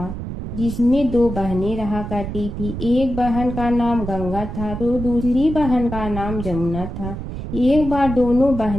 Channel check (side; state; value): right; noise; rumble, 7 dB below the sound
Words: जिसमें 2 बहनें रहा करती थी। एक बहन का नाम गंगा था तो दूसरी बहन का नाम जमुना था। एक बार दोनों